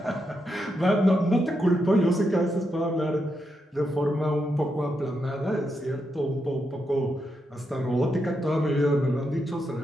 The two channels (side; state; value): both; normal; correlation 0.83